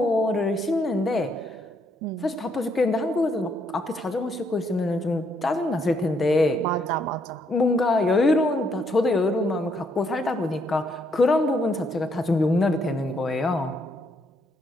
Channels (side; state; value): both; normal; correlation 0.73